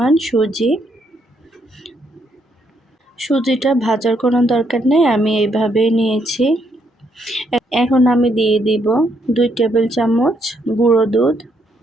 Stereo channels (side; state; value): both; normal; correlation 0.74